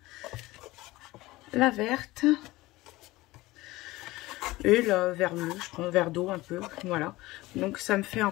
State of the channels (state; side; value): quieter; right; 19.1 dB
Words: la verte et la vert bleu. Je prends vert d'eau un peu, voilà. Donc, ça me fait